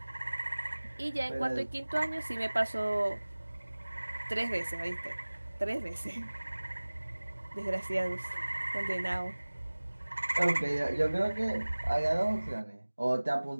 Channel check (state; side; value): inverted; both; correlation -1.00